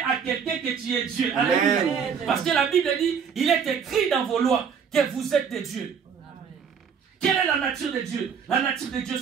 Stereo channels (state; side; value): quieter; left; 6.9 dB